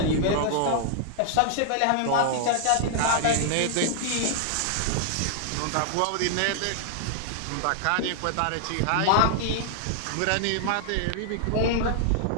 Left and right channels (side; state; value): both; different; correlation -0.01